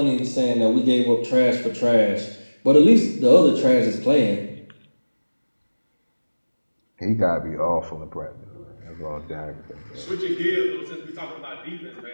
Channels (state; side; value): inverted; both; correlation -1.00